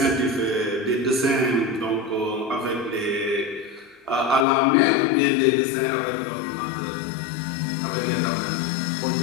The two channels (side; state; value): right; drops out; at 4.5 s